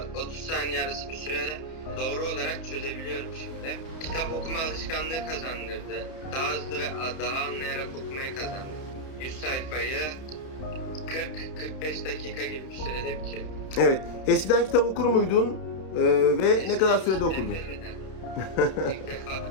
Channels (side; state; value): right; late; 31 ms